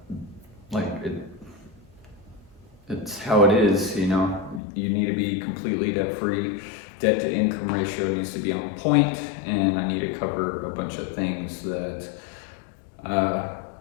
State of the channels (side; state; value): right; drops out; at 4.6 s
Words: it's how it is, you know. You need to be completely debt free. Debt to income ratio needs to be on point, and I need to cover a bunch of things that,